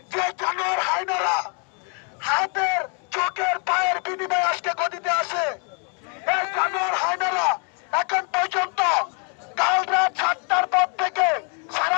যে জানোয়ার হায়নারা হাতের চোখের পায়ের বিনিময়ে আজকে গদিতে আসে, এই জানোয়ার হায়নারা এখন পর্যন্ত কাল রাত 7টার পর থেকে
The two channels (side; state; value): right; quieter; 37.2 dB